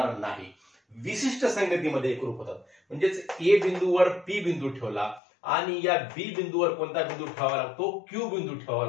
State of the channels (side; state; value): right; drops out; at 5.2 s